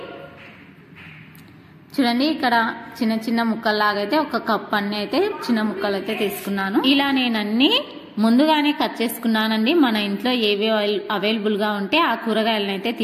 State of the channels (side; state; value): both; identical; correlation 1.00